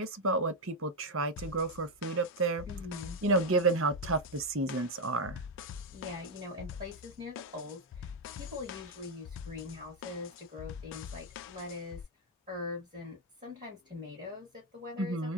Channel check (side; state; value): both; normal; correlation 0.04